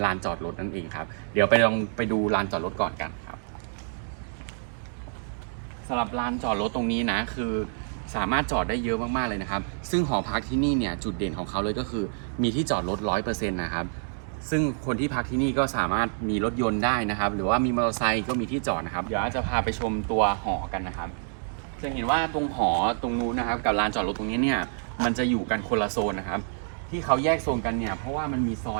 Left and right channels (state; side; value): silent; left; digital silence